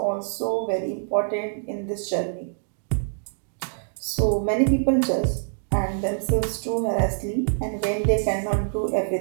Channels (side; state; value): left; silent; digital silence